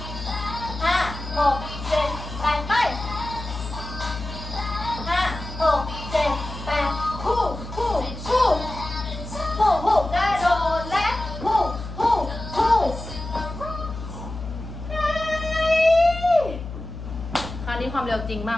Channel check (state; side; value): noise; left; hum, 9 dB below the sound